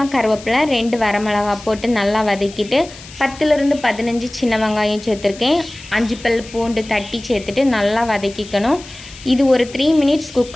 கருவேப்பிலை, 2 வரமிளகா போட்டு நல்லா வதக்கிட்டு 10லேருந்து 15 சின்ன வெங்காயம் சேர்த்துருக்கேன். 5 பல் பூண்டு தட்டி சேர்த்துட்டு நல்லா வதக்கிக்கணும். இது ஒரு 3 மினிட்ஸ்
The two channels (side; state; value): left; noise; hiss, 18 dB below the sound